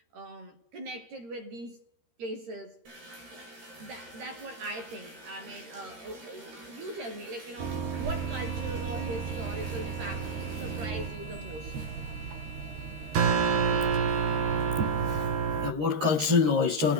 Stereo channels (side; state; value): left; late; 13 ms